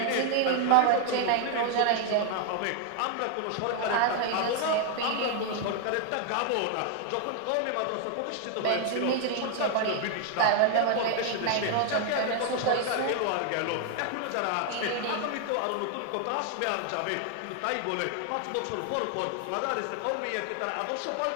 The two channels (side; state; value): both; different; correlation 0.00